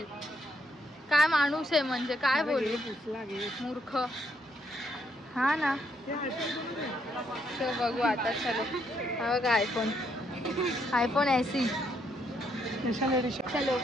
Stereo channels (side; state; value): both; normal; correlation 0.74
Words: काय माणूस आहे म्हणजे काय बोलू. मूर्ख. हा ना. सो बघू आता. चलो हा बघा आयफोन ऐसी. चलो